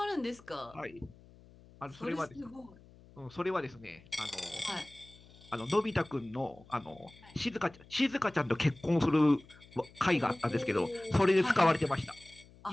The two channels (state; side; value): noise; left; hum, 24 dB below the sound